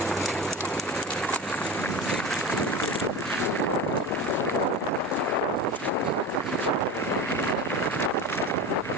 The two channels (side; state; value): both; normal; correlation 0.29